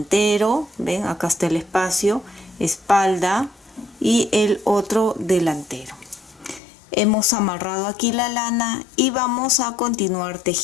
ven, acá está el espacio, espalda y el otro delantero. Hemos amarrado aquí la lana y vamos a continuar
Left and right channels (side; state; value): right; drops out; at 6.6 s